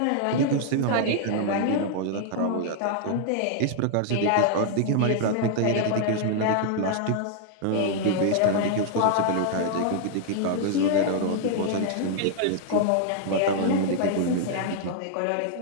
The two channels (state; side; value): different; both; correlation 0.00